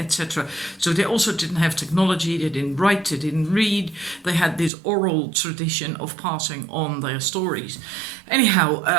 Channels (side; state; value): left; drops out; at 4.7 s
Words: So they also didn't have technology, they didn't write, they didn't read, they had this oral tradition of passing on their stories. Anyhow,